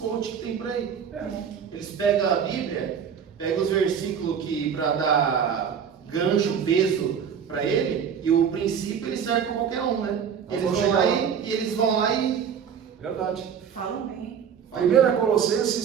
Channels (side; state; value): left; quieter; 7.5 dB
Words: que tem por aí. Eles pegam a Bíblia, pegam os versículos que para dar gancho, peso para ele, e o princípio ele serve para qualquer um, né? Eles vão lá e... Verdade. Falam bem. 1